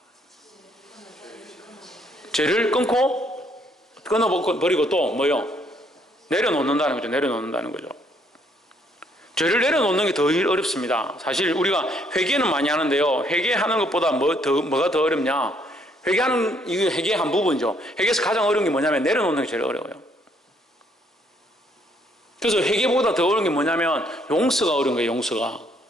죄를 끊어버리고 또 뭐요? 내려놓는다는 거죠. 내려놓는다는 거죠. 죄를 내려놓는 게 더 어렵습니다. 사실 우리가 회개는 많이 하는데요. 회개하는 것보다 뭐가 더 어렵냐? 이게 회개의 한 부분이죠. 회개에서 가장 어려운 게 뭐냐면 내려놓는 게 제일 어려워요. 그래서 회개보다 더 어려운 게 뭐냐면 용서가 어려운 거예요.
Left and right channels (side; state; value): both; normal; correlation 0.68